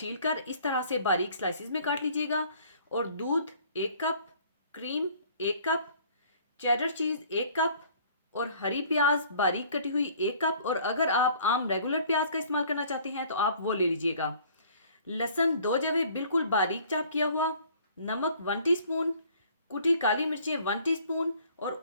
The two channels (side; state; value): both; inverted; correlation -0.55